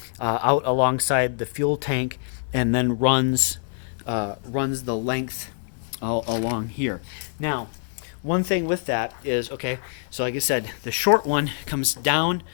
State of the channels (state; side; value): silent; right; 62 dB below the other